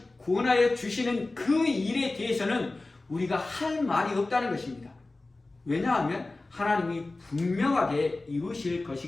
구원하여 주시는 그 일에 대해서는 우리가 할 말이 없다는 것입니다. 왜냐하면 하나님이 분명하게 이루실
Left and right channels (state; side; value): quieter; right; 3.1 dB